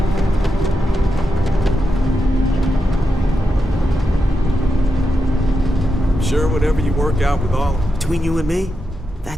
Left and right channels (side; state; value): both; normal; correlation 0.87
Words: Sure, whatever you work out with all. Between you and me,